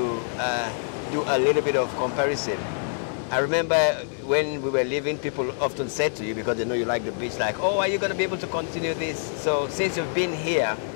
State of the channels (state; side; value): silent; right; 61 dB below the other